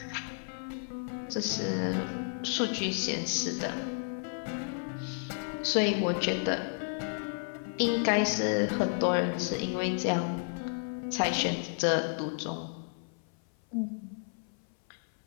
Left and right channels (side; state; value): right; silent; 56 dB below the other